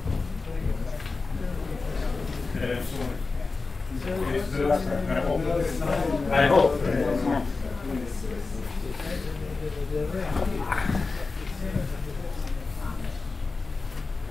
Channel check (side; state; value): right; quieter; 4.0 dB